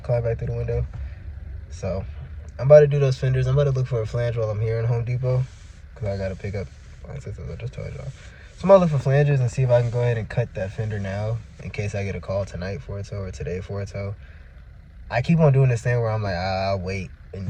climb back through the window. So I'm about to do those fenders. I'm about to look for a flange while I'm here in Home Depot, because I got to pick up my sisters. I just told y'all. So I'm going to look for flanges and see if I can go ahead and cut that fender now in case I get a call tonight for a tow or today for a tow. I keep on doing this thing where I'm like, I'll wait and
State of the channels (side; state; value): both; identical; correlation 1.00